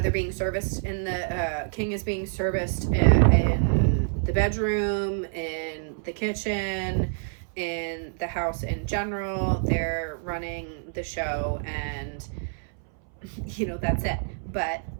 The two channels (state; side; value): silent; left; 60 dB below the other